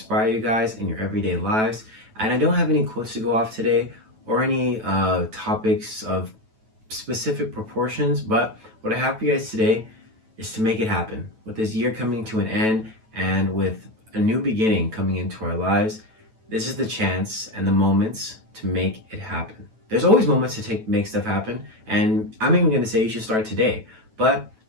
you guys in your everyday lives. And I don't have any quotes to go off today or any topics of specific proportions, but what I have for you guys today is to make it happen. With this year coming to an end and with a new beginning coming into our lives, this is the chance and the moments to make it happen. There's always moments to make stuff happen, and I'm even going to say you should start today. But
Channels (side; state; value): left; late; 9.1 ms